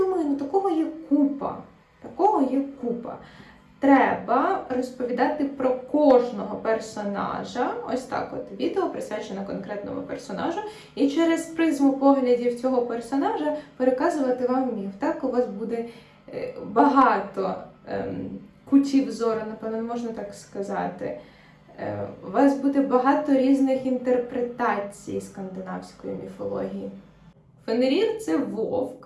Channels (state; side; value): identical; both; correlation 1.00